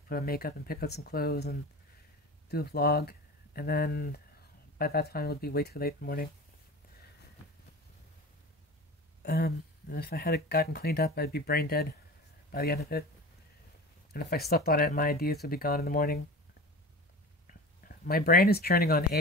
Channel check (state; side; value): normal; both; correlation 0.33